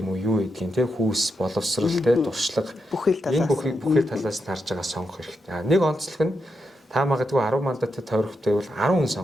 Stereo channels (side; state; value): both; normal; correlation 0.84